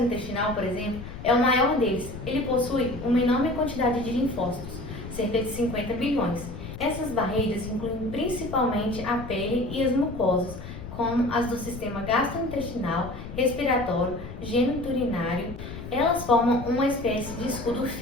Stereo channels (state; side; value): noise; left; rumble, 11 dB below the sound